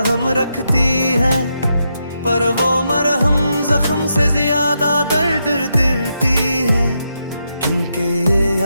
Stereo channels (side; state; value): both; inverted; correlation -0.83